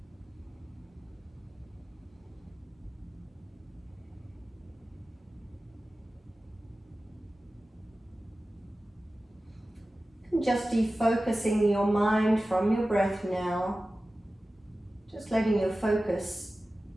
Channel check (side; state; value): both; normal; correlation 0.95